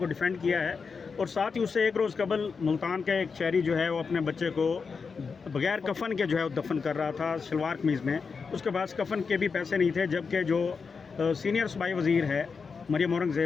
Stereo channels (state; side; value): quieter; right; 5.2 dB